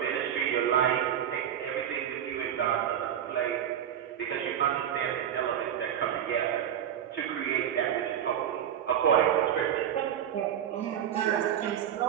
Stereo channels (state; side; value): quieter; left; 9.7 dB